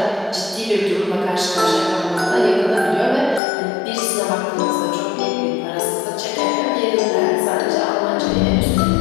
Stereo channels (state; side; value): drops out; right; at 3.4 s